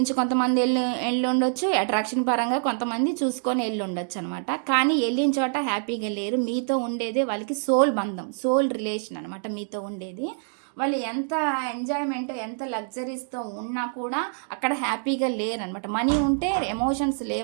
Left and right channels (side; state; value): left; silent; 61 dB below the other